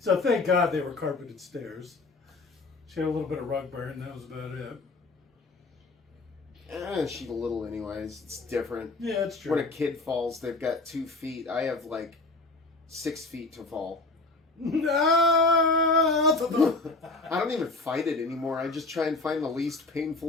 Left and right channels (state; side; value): quieter; right; 3.4 dB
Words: So thank God they were carpeted stairs. She had a little bit of rug burn. That was about it. She's a little anyways. It's different. Yeah, it's true. When a kid falls, they've got 2 feet. I have like 6 feet to fall. I don't even fight it anymore. I just try and find the least